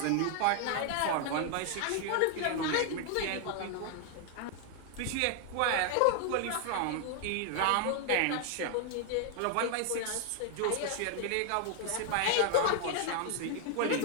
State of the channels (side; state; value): both; different; correlation 0.00